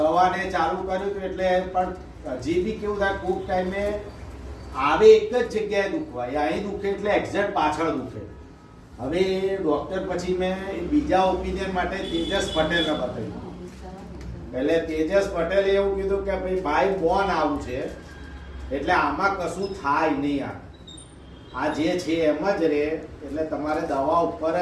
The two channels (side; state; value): both; identical; correlation 1.00